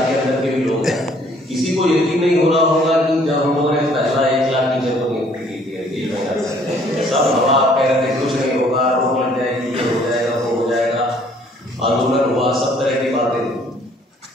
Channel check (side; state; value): both; normal; correlation 0.60